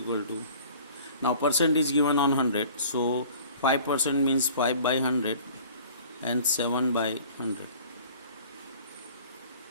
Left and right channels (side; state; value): both; inverted; correlation -0.48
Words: to, now percent is given on 100, so 5% means 5 by 100 and 7 by 100.